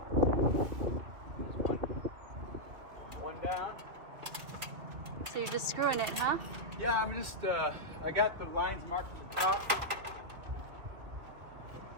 One down. So you're just screwing it, huh? Yeah, I'm just, I got the lines marked at the top.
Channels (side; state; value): left; late; 2.9 ms